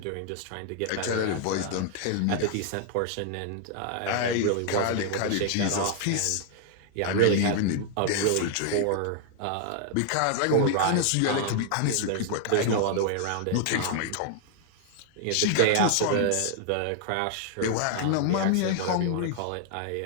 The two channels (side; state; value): both; different; correlation -0.01